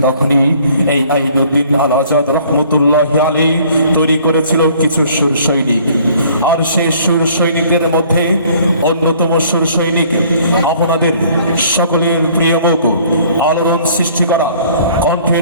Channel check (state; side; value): inverted; both; correlation -0.56